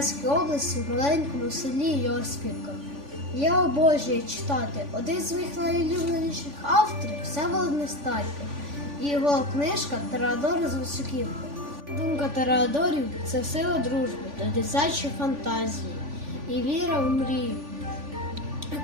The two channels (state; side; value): late; left; 3.5 ms